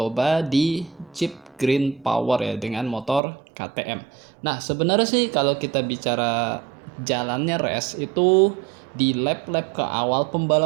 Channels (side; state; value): left; drops out; at 3.2 s